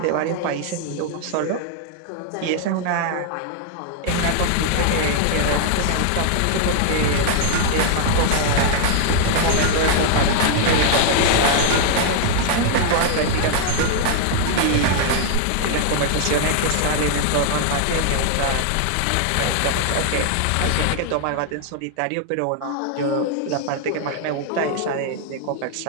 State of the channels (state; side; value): different; both; correlation 0.00